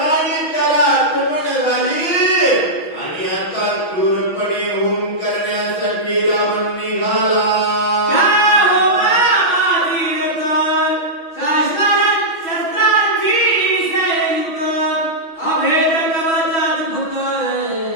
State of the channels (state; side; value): late; right; 6.1 ms